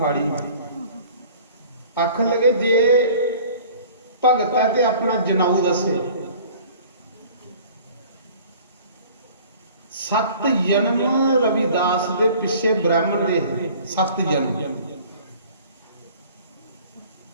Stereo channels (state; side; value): inverted; both; correlation -0.48